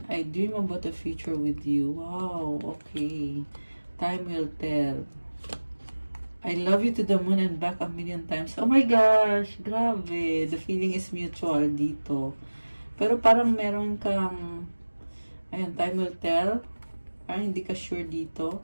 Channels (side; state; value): both; inverted; correlation -1.00